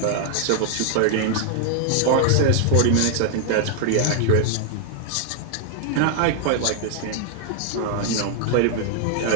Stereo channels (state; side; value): different; both; correlation 0.00